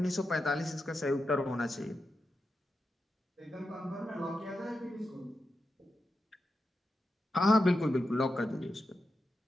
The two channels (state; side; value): normal; both; correlation 0.88